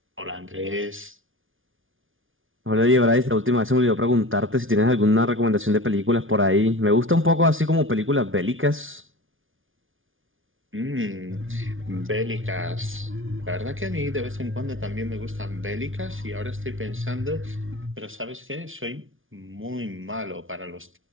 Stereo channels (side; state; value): left; late; 0.58 ms